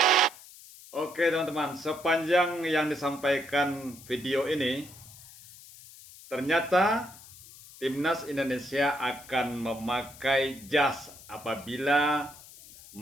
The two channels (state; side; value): noise; left; hiss, 19 dB below the sound